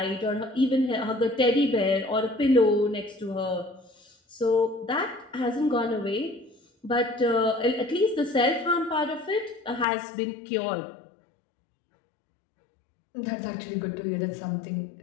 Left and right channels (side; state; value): right; drops out; at 9.9 s